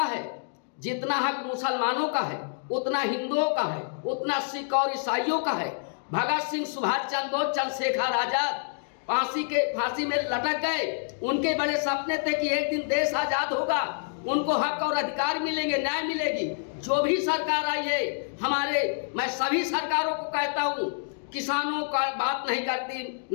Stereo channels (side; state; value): right; silent; digital silence